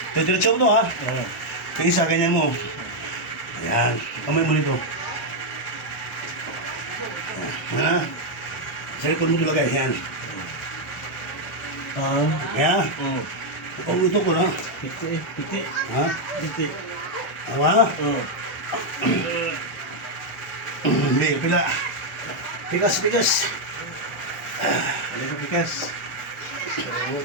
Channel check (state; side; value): normal; both; correlation 0.00